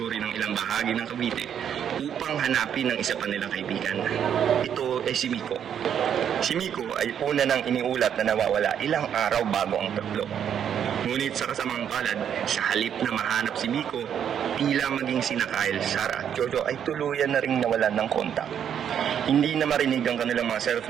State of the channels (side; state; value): left; quieter; 8.8 dB